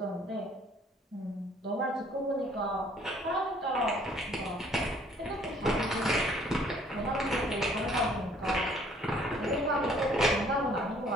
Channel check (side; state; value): both; normal; correlation 0.59